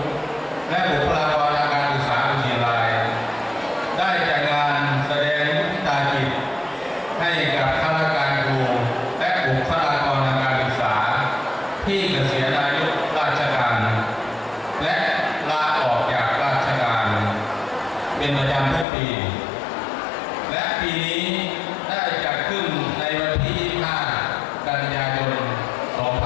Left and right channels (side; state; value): right; drops out; at 18.9 s